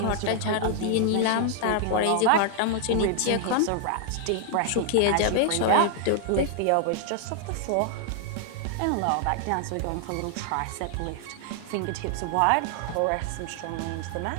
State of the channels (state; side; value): different; both; correlation 0.00